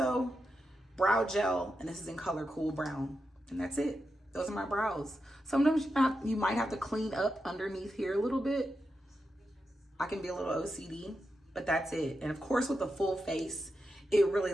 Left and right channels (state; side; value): normal; both; correlation 0.88